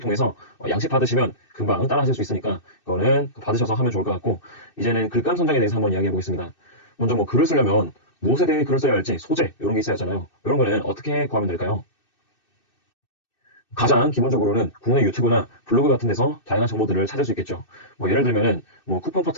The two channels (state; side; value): late; right; 2.6 ms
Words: 양식 받으시면 금방 따라 하실 수 있으니까 그거는 받으셔서 하면 좋을 것 같고, 이제는 글감 선정에 대해서 한번 이야기해 보겠습니다. 먼저 글을 쓰려면 무엇에 대해 글을 써야 할지 소재 이런 게 있어야 하잖아요. 이런 거는 어떻게 구하면 될까요? 가장 기본적으로는 국내 유튜브나 블로그 같은 데서 다양한 정보들을 찾을 수 있겠죠. 예를 들면은 쿠폰